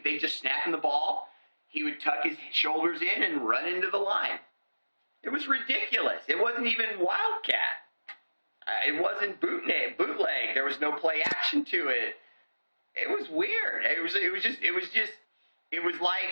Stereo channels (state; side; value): inverted; both; correlation -1.00